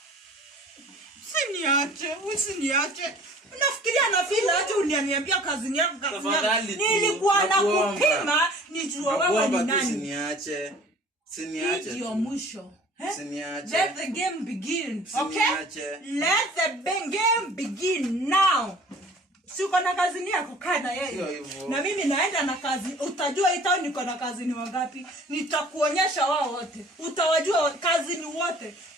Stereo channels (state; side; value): normal; both; correlation 0.49